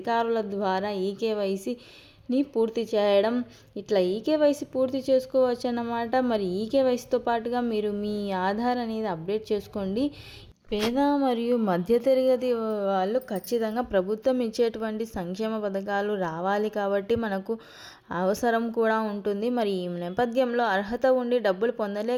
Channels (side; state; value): both; identical; correlation 1.00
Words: ద్వారా ఈకేవైసీని పూర్తి చేయడం, ఇట్లా ఈకేవైసీ పూర్తి చేసుకోవచ్చు అన్నమాట. మరి ఈకేవైసీతో పాటుగా మీరు మీ ఆధార్ అనేది అప్డేట్ చేసుకోండి. పేద మరియు మధ్యతరగతి వాళ్ళు ఖచ్చితంగా ప్రభుత్వం ఇచ్చేటువంటి సంక్షేమ పథకాలు రావాలి కాబట్టి మనకు అవసరం కూడా ఉంటుంది. మరి ఈ నేపథ్యంలో అర్హత ఉండి డబ్బులు